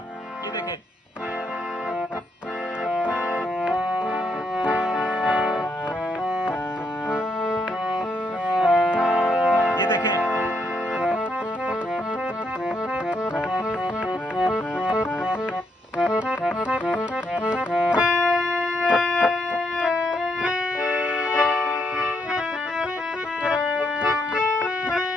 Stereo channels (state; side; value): normal; both; correlation 0.77